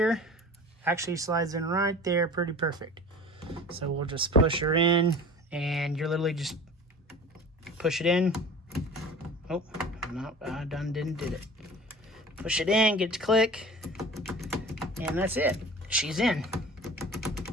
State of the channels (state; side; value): normal; both; correlation 0.40